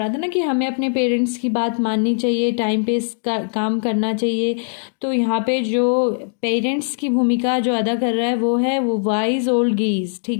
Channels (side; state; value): right; silent; digital silence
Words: था ना कि हमें अपने पेरेंट्स की बात माननी चाहिए, टाइम पे काम करना चाहिए। तो यहाँ पे जो पेरेंट्स की भूमिका जो अदा कर रहा है वो वाइज ओल्ड गीज,